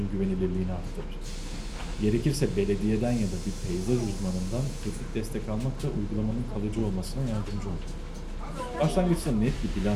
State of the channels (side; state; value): both; identical; correlation 1.00